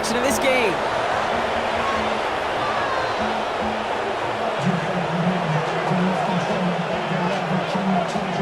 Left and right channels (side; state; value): both; identical; correlation 1.00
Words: of this game.